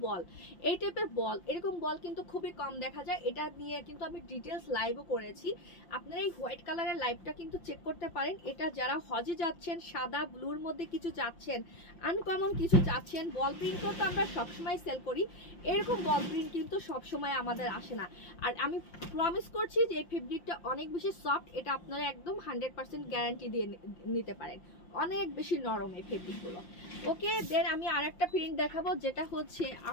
বল। এই টাইপের বল, এরকম বল কিন্তু খুবই কম দেখা যায়। এটা নিয়ে কিন্তু আমি ডিটেলস লাইভও করেছি, আপনারা এই হোয়াইট কালারের লাইভটা কিন্তু চেক করতে পারেন। এটা যারা হজে যাচ্ছেন, সাদা ব্লুর মধ্যে কিছু চাচ্ছেন, আনকমন কিছু চাচ্ছেন, বল প্রিন্ট তো আমরা সবসময় সেল করি, এরকম বল প্রিন্ট কিন্তু সবসময় আমাদের আসে না। আর আমি প্রমিস করছি যে এই ফেব্রিকটা অনেক বেশি সফট, এটা আপনারা একদম 100% গ্যারান্টি দিয়ে নিতে পারেন। অনেক বেশি নরম এই ফেব্রিকগুলো। ওকে, দেন আমি আরেকটা প্রিন্ট দেখাবো, যেটা হচ্ছে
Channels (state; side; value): late; right; 5.7 ms